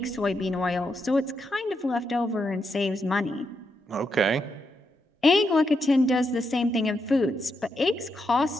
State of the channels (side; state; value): both; normal; correlation 0.82